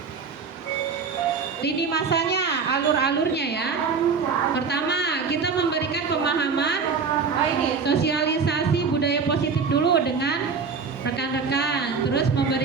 Lini masanya, alur-alurnya ya. Pertama, kita memberikan pemahaman, sosialisasi budaya positif dulu dengan rekan-rekan. Terus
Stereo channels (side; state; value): left; quieter; 5.3 dB